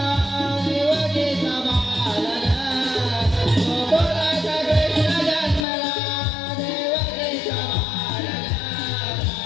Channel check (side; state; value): right; drops out; at 5.7 s